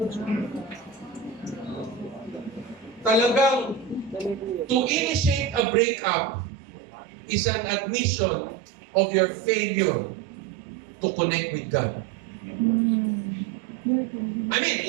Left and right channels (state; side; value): drops out; left; at 5.7 s